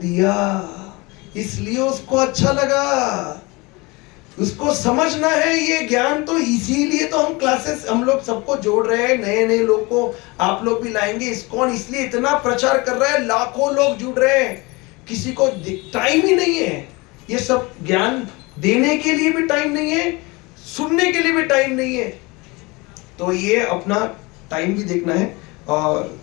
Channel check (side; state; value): right; quieter; 25.0 dB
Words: इसलिए उसको अच्छा लगा। उसको समझना है ये ज्ञान। तो इसीलिए तो हम क्लासेस, हम लोग सबको जोड़ रहे हैं, नए नए लोग को आप लोग भी लाएंगे। इस्कॉन इसलिए इतना प्रचार कर रहा है, लाखों लोग जुड़ रहे हैं। किसी को टाइम ही नहीं है, ये सब ज्ञान देने के लिए भी टाइम नहीं है, सुनने के लिए भी टाइम नहीं है। तो ये अपना टाइम भी देखना है। और